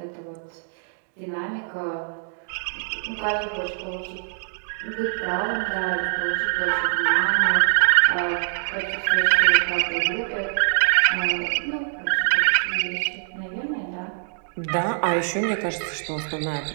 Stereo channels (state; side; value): silent; left; digital silence